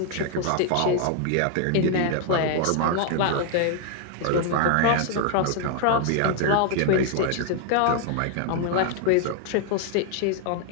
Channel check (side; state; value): both; different; correlation 0.00